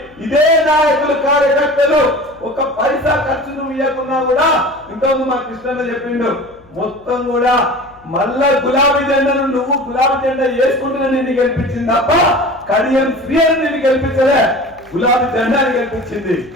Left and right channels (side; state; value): left; noise; hum, 29 dB below the sound